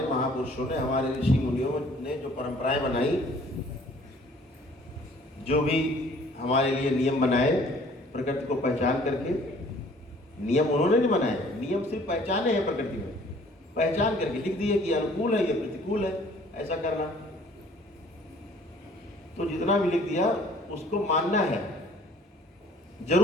महापुरुषों ने, हमारे ऋषि मुनियों ने जो परंपराएं बनाई, जो भी हमारे लिए नियम बनाए प्रकृति को पहचान करके, नियम उन्होंने नहीं बनाए, नियम सिर्फ पहचाने हैं प्रकृति में, पहचान करके लिख दिए कि अनुकूल है, ये प्रतिकूल है, ऐसा करना। तो जितना भी लिख दिया उसको मानना है,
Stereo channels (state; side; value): normal; both; correlation 0.55